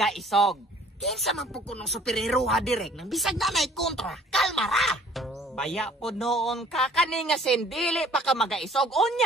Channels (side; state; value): both; normal; correlation 0.54